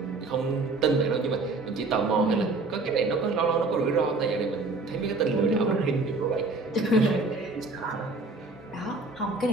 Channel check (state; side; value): quieter; left; 3.5 dB